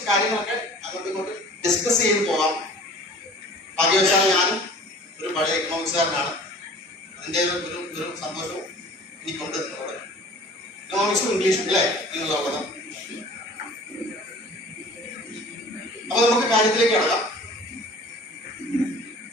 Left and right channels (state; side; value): normal; both; correlation 0.46